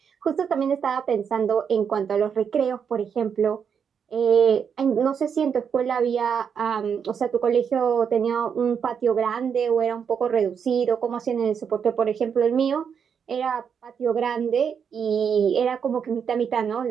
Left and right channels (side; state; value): left; quieter; 7.1 dB